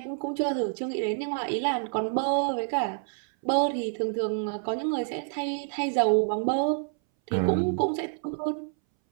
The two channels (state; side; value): silent; left; 59 dB below the other